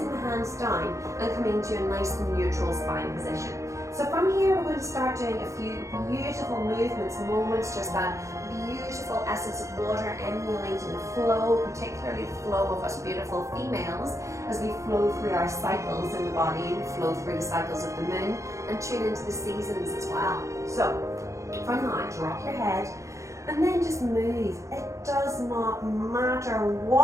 the hands down and coming to a nice and neutral spine position. So from here, we're going to start doing a few beautiful movements, moments, just that beautiful essence of water emulating the flow, particularly the flow of us beautiful females as we flow through our cycles in the body and flow through the cycles of the moon and tune into the seasons as well. So from now, drop your head and then just move. It does not matter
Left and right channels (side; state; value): left; late; 0.15 ms